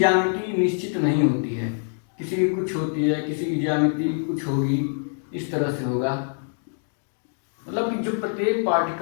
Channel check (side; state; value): right; silent; digital silence